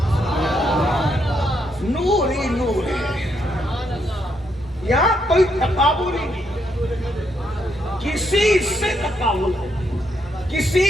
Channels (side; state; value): both; normal; correlation 0.77